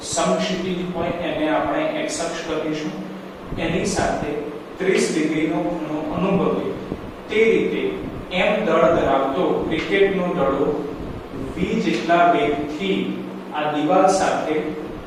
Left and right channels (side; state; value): both; identical; correlation 1.00